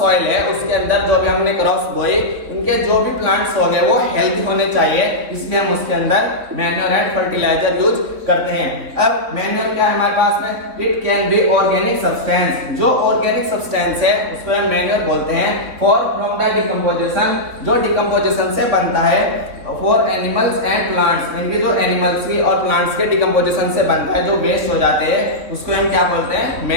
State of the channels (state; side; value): late; left; 3.8 ms